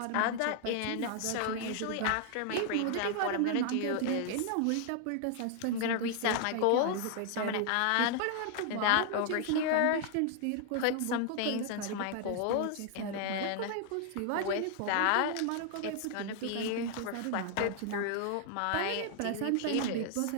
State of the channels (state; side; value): different; both; correlation 0.00